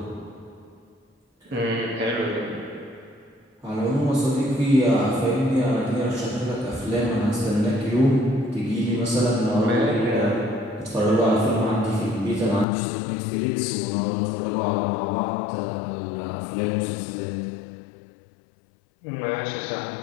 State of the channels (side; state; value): right; drops out; at 12.7 s